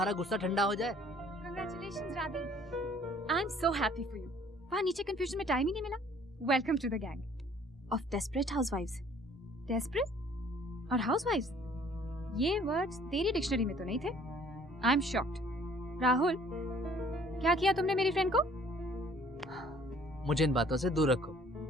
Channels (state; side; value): normal; both; correlation 0.57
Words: गुस्सा ठंडा हो जाए। Congratulations, Radhi. I'm so happy for you. वहाँ नीचे कंफ्यूजन में टाइम ही नहीं मिला। Welcome to the gang. Of desperate housewives. Desperate और housewives, ये वर्ड्स तेरी डिक्शनरी में तो नहीं थे। I'm shocked. राहुल, क्या किया तुमने मेरी फ्रेंड को? मुझे इन बातों से दूर रखो,